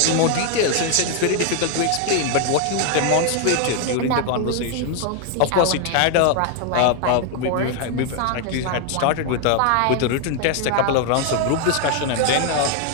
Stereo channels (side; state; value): both; different; correlation 0.00